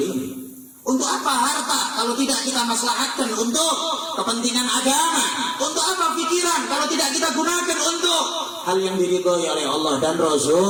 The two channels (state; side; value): identical; both; correlation 1.00